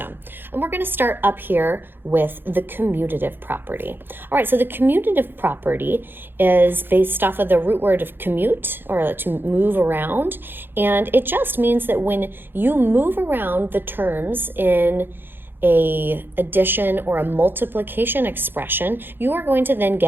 And we're going to start up here with the commutative property. All right, so the commutative property is based off of the root word of commute, or to move around. And it just means that when you move around the terms in a addition or a multiplication expression, you are going to then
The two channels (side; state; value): left; late; 0.10 ms